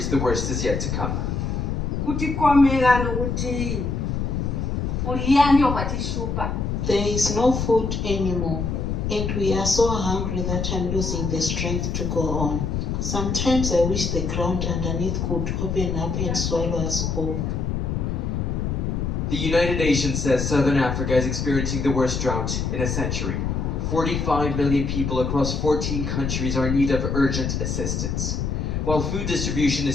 the worst is yet to come. There is no food anymore, and we are so hungry that I'm losing the strength to go on. Sometimes I wish the ground underneath could open up and swallow us whole. The United Nations says Southern Africa is experiencing the worst drought in a century. 45 million people across 14 countries are in need of urgent assistance. While food distribution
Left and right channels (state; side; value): noise; left; rumble, 1 dB below the sound